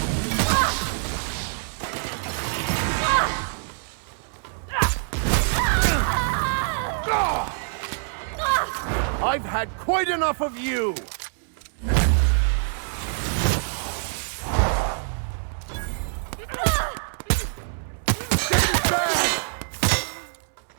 I've had quite enough of you!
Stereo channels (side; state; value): left; silent; 62 dB below the other